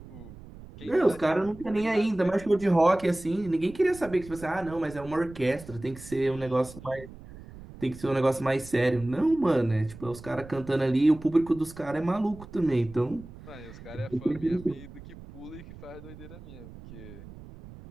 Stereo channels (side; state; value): right; noise; rumble, 17 dB below the sound